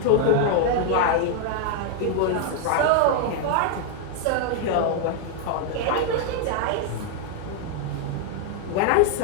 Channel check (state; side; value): different; both; correlation 0.00